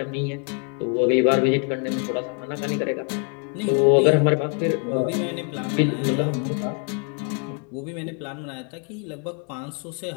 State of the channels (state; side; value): quieter; right; 38.3 dB